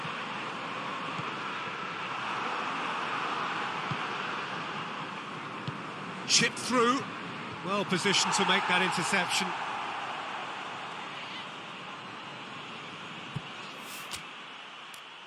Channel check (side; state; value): both; identical; correlation 1.00